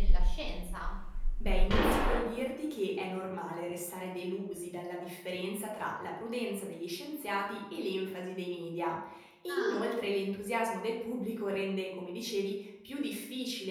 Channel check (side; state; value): both; identical; correlation 1.00